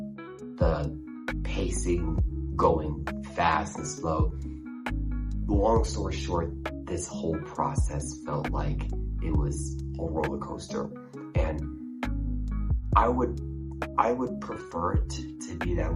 the pacing going fast and slow. Long story short, this whole process felt like it was a roller coaster, and I would prefer it to be that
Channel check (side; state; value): both; identical; correlation 1.00